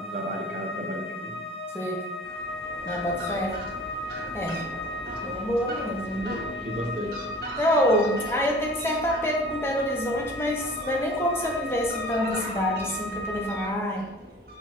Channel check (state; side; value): normal; both; correlation 0.44